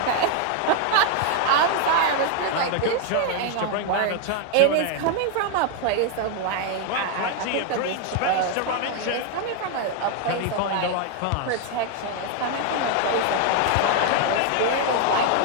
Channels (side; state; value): both; different; correlation 0.00